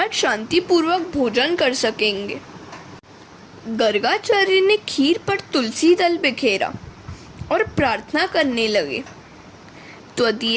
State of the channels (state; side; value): identical; both; correlation 1.00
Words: शांतिपूर्वक भोजन कर सकेंगे। गर्गाचार्य ने खीर पर तुलसी दल बिखेरा और प्रार्थना करने लगे,